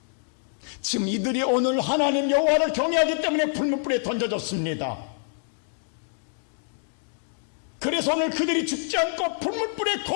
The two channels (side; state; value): right; silent; digital silence